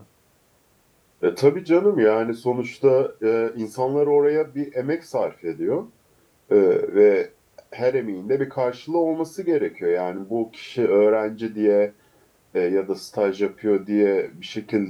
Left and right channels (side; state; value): both; identical; correlation 1.00